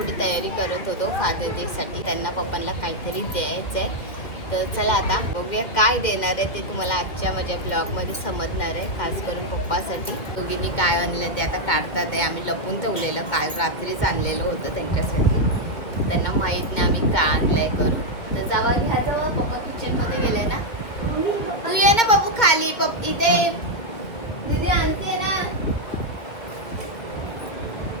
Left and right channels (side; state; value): right; late; 2.4 ms